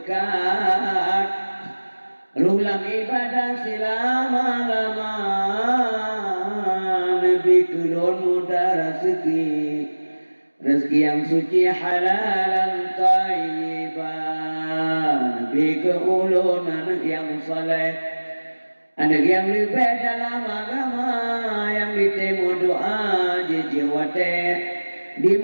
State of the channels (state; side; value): inverted; both; correlation -1.00